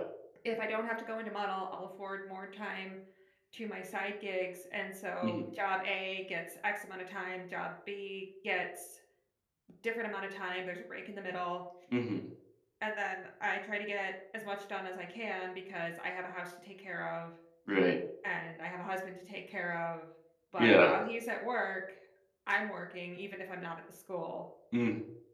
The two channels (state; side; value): identical; both; correlation 1.00